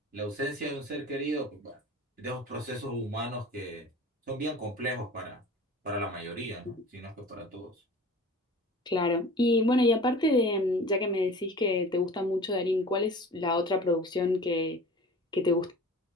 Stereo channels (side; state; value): both; normal; correlation 0.41